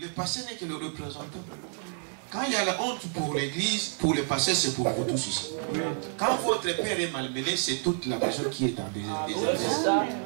pasteur n'est que le représentant. Quand il y a la honte pour l'église, pour le pasteur, c'est pour vous tous ici. Quand votre père est malmené, c'est toute la maison qui est dans des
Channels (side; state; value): left; silent; 57 dB below the other